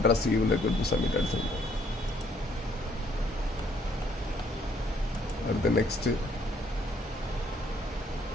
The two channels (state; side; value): normal; both; correlation 0.65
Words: you will require to submit address. அடுத்து next